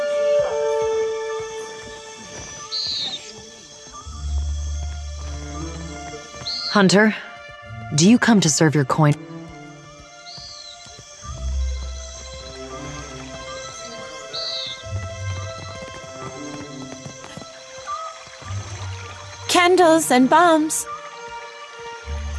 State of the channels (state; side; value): identical; both; correlation 1.00